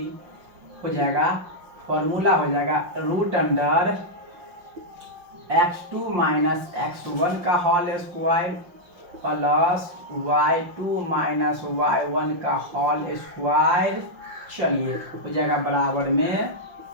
हो जाएगा, फॉर्मूला हो जाएगा root under x2 minus x1 का whole square plus y2 minus y1 का होल स्क्वायर। चलिए हो जाएगा बराबर में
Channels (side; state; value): left; late; 5.6 ms